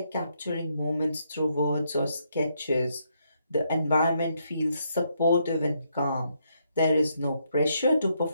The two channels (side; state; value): both; inverted; correlation -0.76